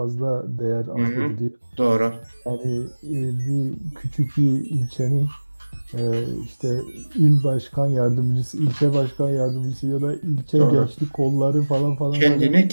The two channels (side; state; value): both; inverted; correlation -1.00